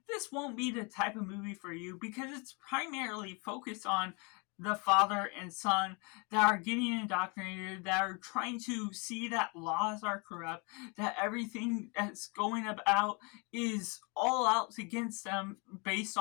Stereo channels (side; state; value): right; quieter; 31.7 dB